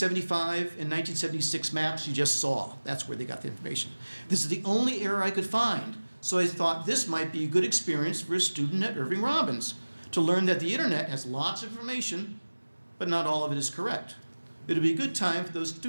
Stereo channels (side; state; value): both; inverted; correlation -1.00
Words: and 1976 maps you just saw. That's where they got the information. This is the only error I could find, so I thought this might be a good experience for a student at Irving Robbins to learn that the internet has lots of information, but not all of it is correct. It'll be a good time for those